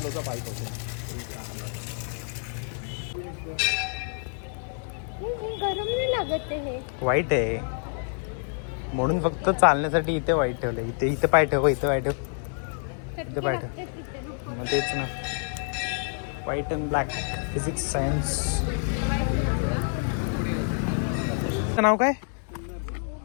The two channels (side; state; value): right; silent; 56 dB below the other